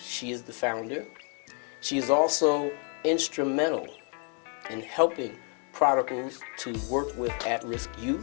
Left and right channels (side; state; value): right; quieter; 40.0 dB